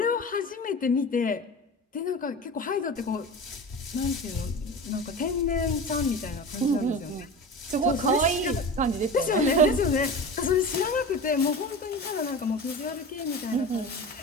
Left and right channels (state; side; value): normal; both; correlation 0.31